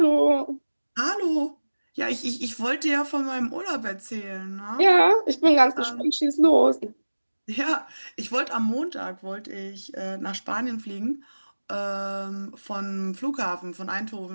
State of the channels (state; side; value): inverted; both; correlation -1.00